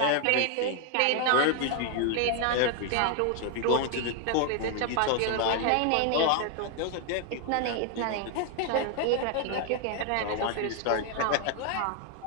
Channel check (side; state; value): both; different; correlation 0.00